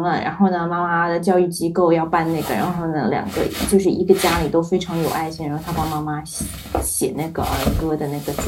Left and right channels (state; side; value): identical; both; correlation 1.00